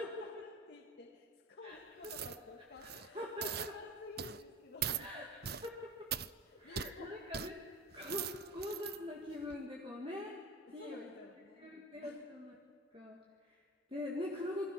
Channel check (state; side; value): normal; both; correlation 0.34